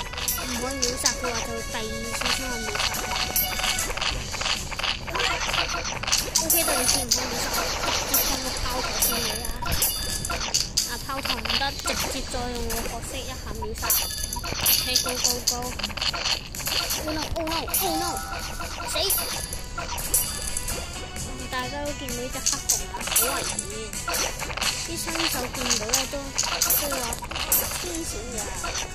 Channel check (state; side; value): identical; both; correlation 1.00